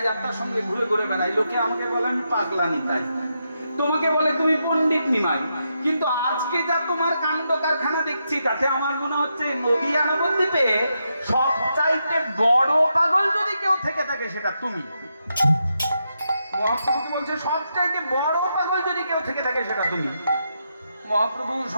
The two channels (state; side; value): inverted; both; correlation -0.83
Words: যাত্রার সঙ্গে ঘুরে ঘুরে বেড়াই, লোকে আমাকে বলে আমি পাগলা নিতাই। তোমাকে বলে তুমি পণ্ডিত নিমাই। কিন্তু আজকে যা তোমার কাণ্ড কারখানা দেখছি, তাতে আমার মনে হচ্ছে নদিয়া নবদ্বীপে সবচাইতে বড় পাগল যদি কেউ থেকে থাকে সেটা তুমি। মহাপ্রভু কি বলছে? সবচাইতে বড় পাগল যদি কেউ থেকে থাকে সেটা তুমি। মহাপ্রভু